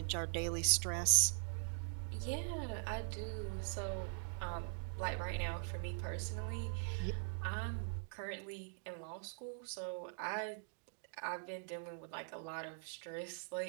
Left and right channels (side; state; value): left; silent; digital silence